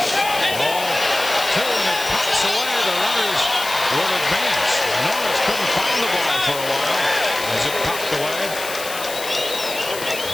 Ball 2, and it pops away. The runners will advance. Norris couldn't find the ball for a while as it popped away.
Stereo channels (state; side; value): noise; left; hiss, 9 dB below the sound